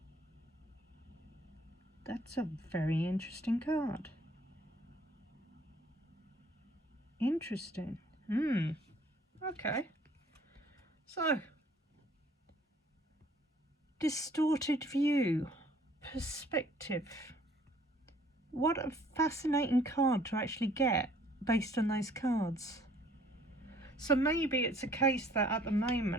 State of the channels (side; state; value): both; normal; correlation 0.58